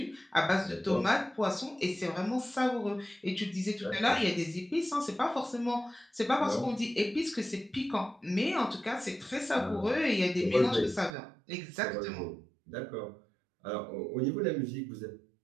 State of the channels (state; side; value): drops out; left; at 11.1 s